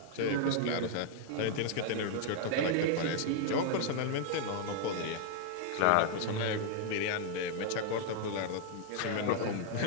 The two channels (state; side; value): different; both; correlation 0.00